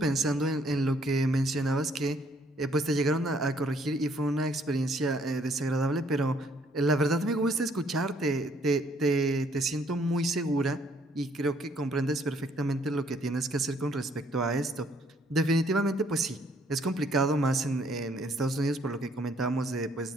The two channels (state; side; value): normal; both; correlation 0.65